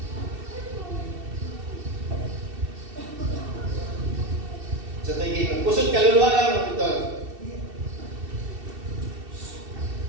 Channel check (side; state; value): left; late; 2.7 ms